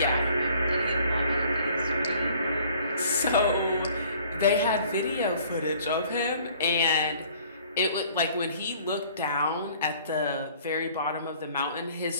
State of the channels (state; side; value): inverted; both; correlation -0.55